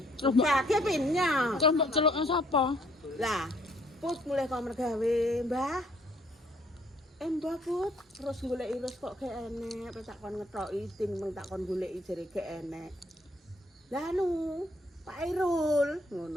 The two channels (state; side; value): normal; both; correlation 0.65